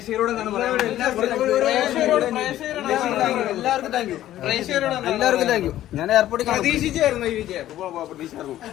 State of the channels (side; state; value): right; quieter; 13.3 dB